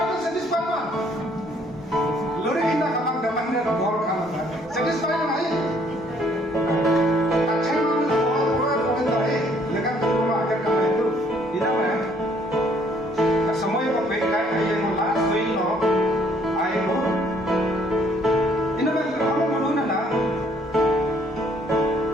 man. Lori kita kapan dalam dia bor kapan? Satisfied man ay. Aceh man bor dah. Lega tu agar kapan itu, ina mana? Semua yang baik kaya yang last week no, ayo. Ina mana kamu malu na?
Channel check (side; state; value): both; normal; correlation 0.64